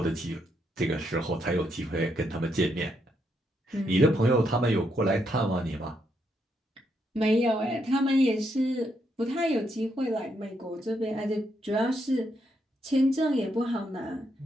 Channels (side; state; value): both; normal; correlation 0.78